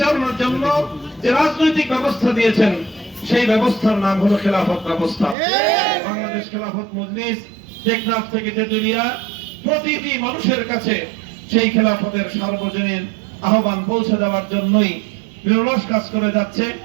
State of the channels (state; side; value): drops out; left; at 5.4 s